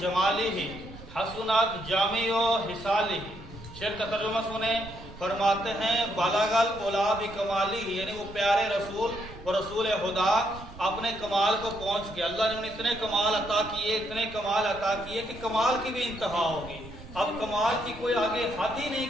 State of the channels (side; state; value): right; noise; rumble, 16 dB below the sound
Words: हसनत जामिओ हिसालिही। शेर का तर्जुमा सुने, फरमाते हैं बलागल उला बि कमालिही, यानी वो प्यारे रसूल और रसूल खुदा अपने कमाल को पहुंच गए। अल्लाह ने उन्हें इतने कमाल अता किए, इतने कमाल अता किए कि कमाल की भी इंतहा होगी, अब कमाल की कोई आगे हद ही नहीं